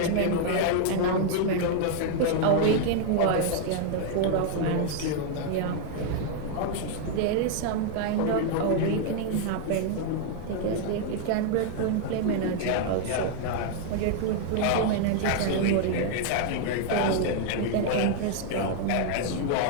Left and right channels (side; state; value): both; different; correlation 0.00